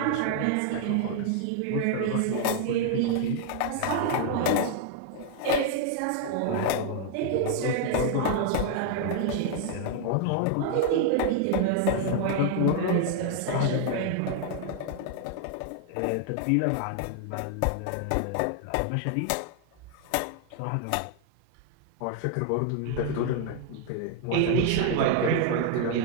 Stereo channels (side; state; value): both; different; correlation 0.00